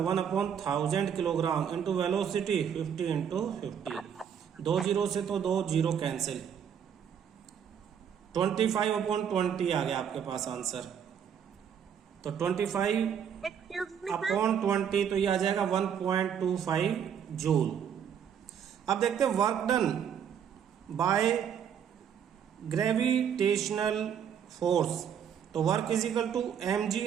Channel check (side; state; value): left; quieter; 8.3 dB